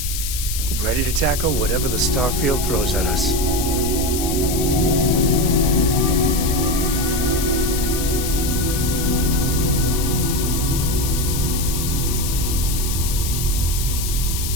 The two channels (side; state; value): left; noise; hiss, 5 dB below the sound